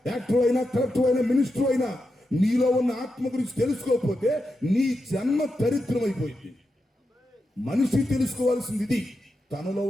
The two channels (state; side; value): normal; both; correlation 0.87